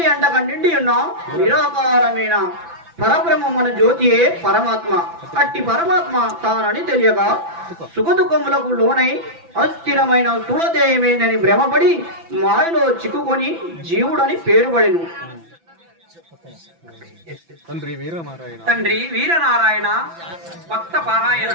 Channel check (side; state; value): left; late; 5.9 ms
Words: అంటక నిండి ఉన్న నిరాకారమైన పరబ్రహ్మమున జ్యోతియే పరమాత్మ. అట్టి పరమాత్మ తానని తెలియక సుఖదుఖములకు లోనై అస్థిరమైన స్థూలదేహమేనని భ్రమపడి మాయలో చిక్కుకొని జీవుడని పేరుబడెను. తండ్రి, వీరనారాయణ భక్త పారాయణ.